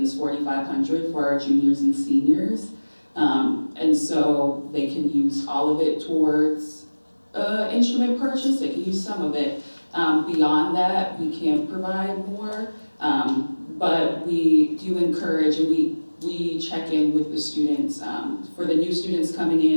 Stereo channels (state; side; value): inverted; both; correlation -1.00